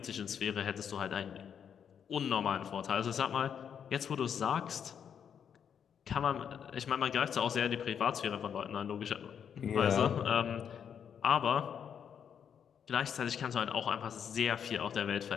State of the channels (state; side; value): quieter; right; 8.0 dB